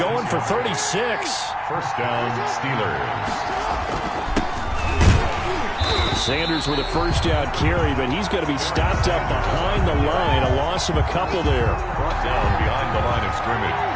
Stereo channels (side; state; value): both; identical; correlation 1.00